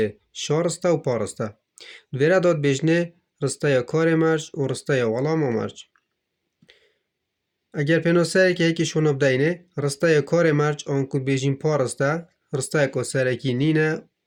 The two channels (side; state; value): both; identical; correlation 1.00